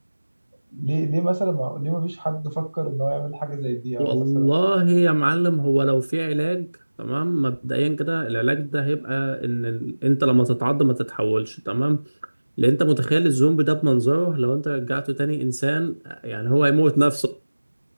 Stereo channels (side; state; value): both; inverted; correlation -1.00